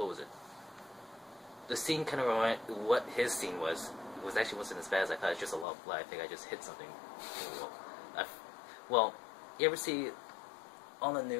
was it? The scene kind of reminded, what his scene was actually wasn't as bad as I thought. It's just a lot of blood. I think I just hit something. Well, you ever see, on the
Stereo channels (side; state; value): right; drops out; at 5.7 s